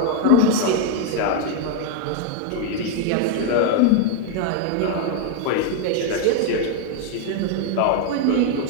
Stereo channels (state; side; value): different; both; correlation 0.00